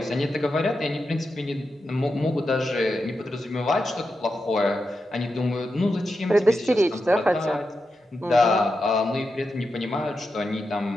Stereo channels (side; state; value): both; normal; correlation 0.88